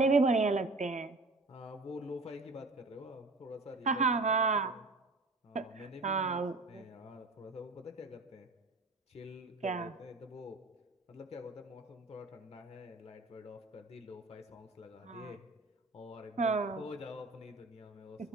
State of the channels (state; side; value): quieter; left; 3.2 dB